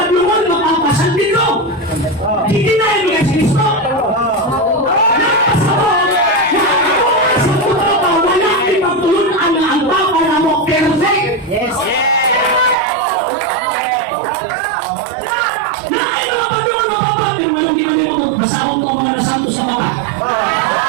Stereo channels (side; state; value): left; drops out; at 12.8 s